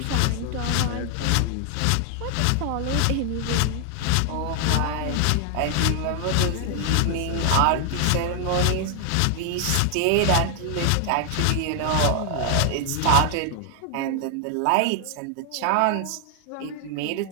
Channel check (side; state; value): both; different; correlation 0.00